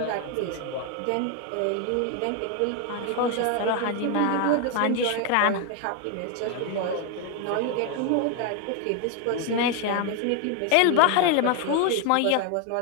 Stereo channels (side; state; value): both; different; correlation 0.01